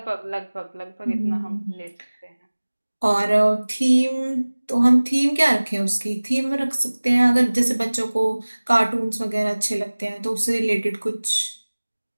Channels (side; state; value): both; inverted; correlation -1.00